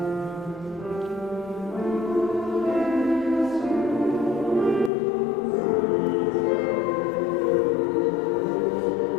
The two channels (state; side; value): drops out; right; at 4.9 s